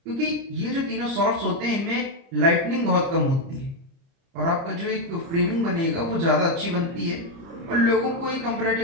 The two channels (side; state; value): left; late; 30 ms